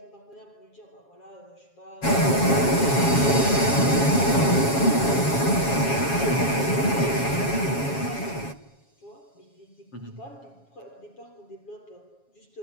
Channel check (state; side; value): late; right; 7.3 ms